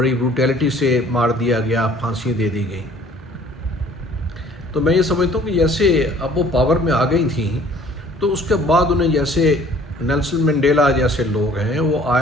بروٹیلٹی سے مار دیا گیا، پھانسی دے دی گئی۔ تو میں یہ سمجھتا ہوں کہ جیسے اب وہ پاور میں آ گئی تھیں، تو اس کے بعد انہیں، جیسے نیلسن منڈیلا جیسے لوگ ہیں، وہ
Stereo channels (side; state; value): both; normal; correlation 0.54